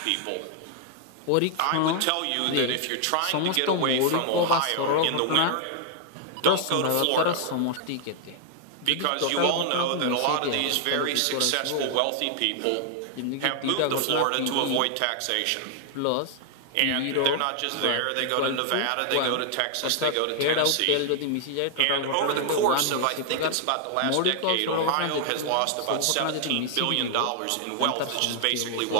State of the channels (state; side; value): different; both; correlation 0.00